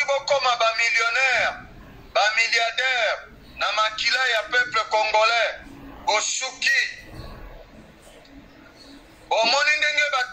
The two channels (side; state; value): both; identical; correlation 1.00